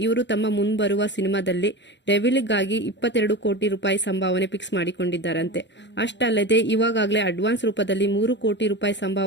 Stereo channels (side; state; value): right; late; 0.52 ms